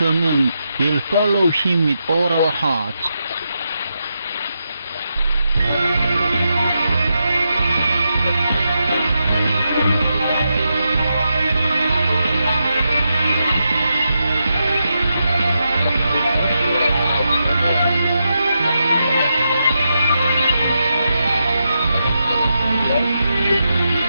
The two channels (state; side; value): inverted; both; correlation -0.85